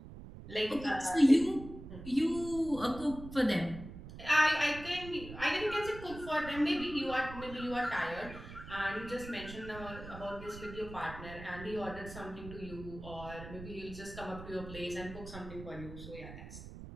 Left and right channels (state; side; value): noise; right; rumble, 13 dB below the sound